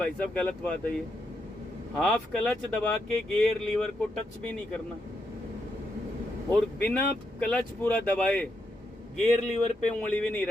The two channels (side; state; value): both; normal; correlation 0.81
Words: साहब गलत बात है ये। हाफ क्लच दबा के गियर लीवर को टच भी नहीं करना, और बिना क्लच पूरा दबाए गियर लीवर पे उंगली भी नहीं